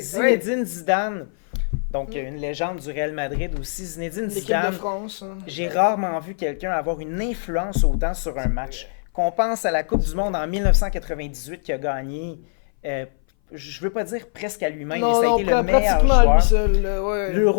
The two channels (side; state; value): right; silent; 60 dB below the other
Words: Zidane, donc une légende du Real Madrid aussi. Zinedine L'équipe Zidane, de France. Hein. j'ai rarement vu quelqu'un avoir une influence autant sur un match. Qu'on pense à la Coupe du Monde en 1998 qui a gagné, je veux pas dire presque à lui-même, mais ça a été le meilleur pratiquement à joueur. lui seul. Ouais.